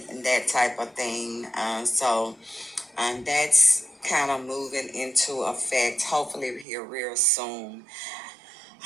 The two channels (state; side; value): drops out; left; at 6.7 s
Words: that type of thing. That's kind of moving into effect. Hopefully, here real soon.